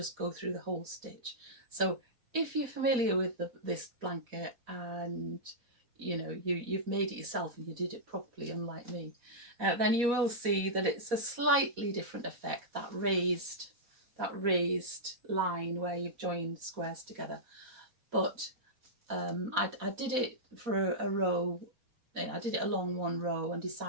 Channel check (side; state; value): left; late; 4.2 ms